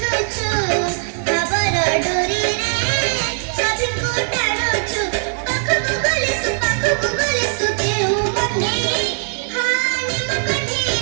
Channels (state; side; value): silent; left; 66 dB below the other